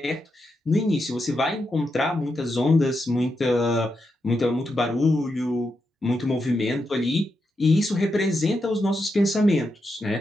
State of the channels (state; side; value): normal; both; correlation 0.85